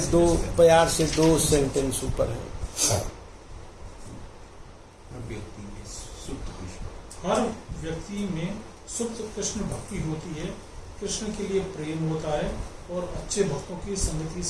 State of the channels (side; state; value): both; identical; correlation 1.00